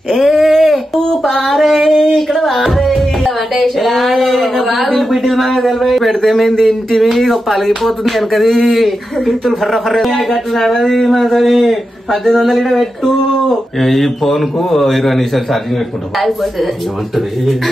పెడితే మేము ఇంటివి పలిగిపోతుంది వెనకది పిత్తులు ఫర్ర ఫర్ర 1800 పెట్టు. ఈ ఫోన్ కు 20 నిమిషాలు ఛార్జింగ్ పెట్టుకుంటాం.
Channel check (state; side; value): normal; both; correlation 0.89